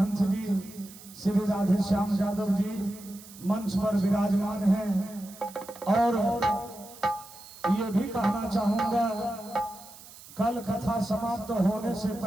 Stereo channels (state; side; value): noise; right; hiss, 19 dB below the sound